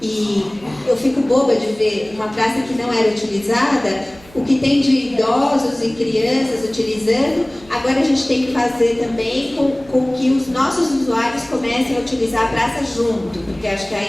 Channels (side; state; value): right; noise; hum, 24 dB below the sound